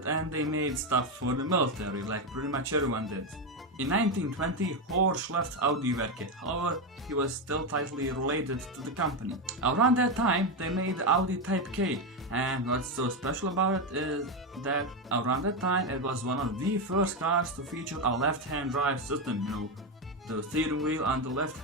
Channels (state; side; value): normal; both; correlation 0.10